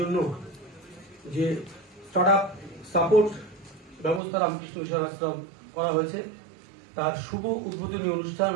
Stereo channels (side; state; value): left; drops out; at 4.2 s